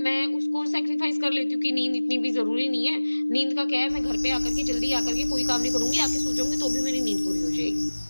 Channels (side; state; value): both; inverted; correlation -1.00